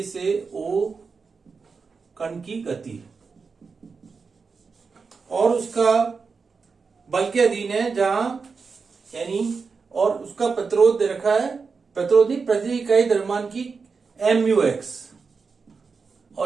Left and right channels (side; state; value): left; quieter; 5.0 dB